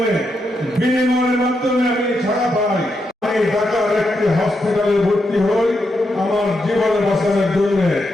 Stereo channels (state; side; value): normal; both; correlation 0.83